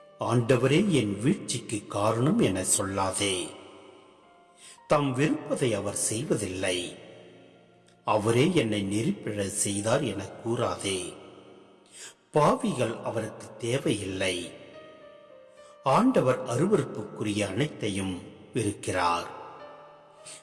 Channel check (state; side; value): identical; both; correlation 1.00